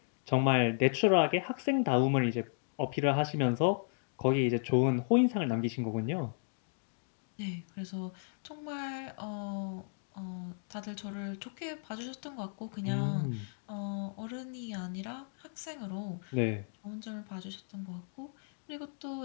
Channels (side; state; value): right; silent; digital silence